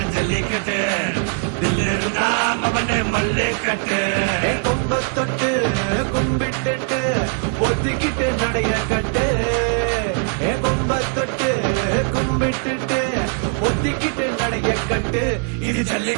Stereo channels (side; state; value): left; quieter; 38.7 dB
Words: ஜல்லிக்கட்டு தில் இருந்தா மவனே மல்லிக்கட்டு கும்ப தொட்டு கும்பிட்டுட்டு ஒத்திக்கிட்டு நடைய கட்டு கும்ப தொட்டு கும்பிட்டுட்டு ஒத்திக்கிட்டு நடைய கட்டு இது